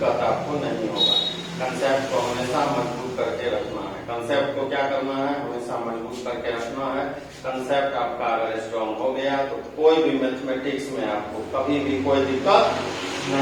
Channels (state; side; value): identical; both; correlation 1.00